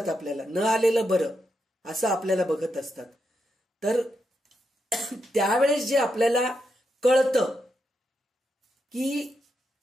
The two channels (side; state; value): both; normal; correlation 0.83